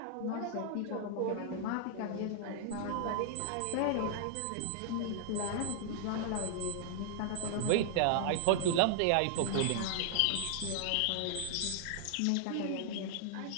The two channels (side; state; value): both; different; correlation 0.00